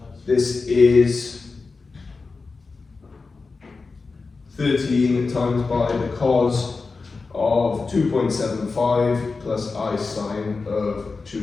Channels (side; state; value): right; quieter; 4.2 dB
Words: this is 13 times by the cos of 2.75 plus I sine of